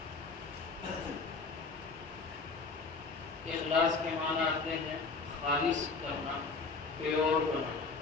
اخلاص کے معنی آتے ہیں خالص کرنا، پیور بنانا.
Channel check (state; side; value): quieter; right; 4.3 dB